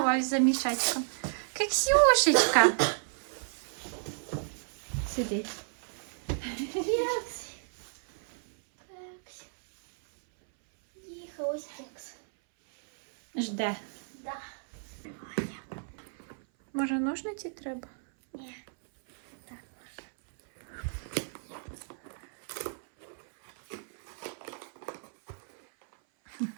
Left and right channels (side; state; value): left; silent; 56 dB below the other